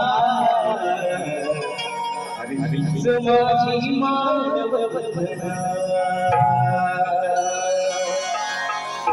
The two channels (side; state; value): both; identical; correlation 1.00